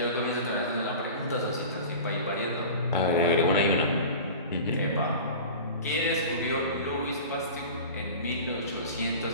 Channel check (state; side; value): inverted; both; correlation -0.35